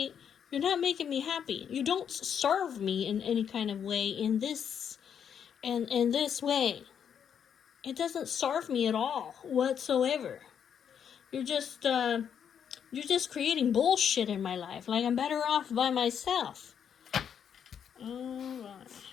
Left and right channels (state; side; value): quieter; right; 8.1 dB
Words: You're not making me happy. You don't serve me in any kind of way in this way. It doesn't serve me at all whatsoever. You're just creating bullshit in my life. Like, I'm better off by myself. Alright.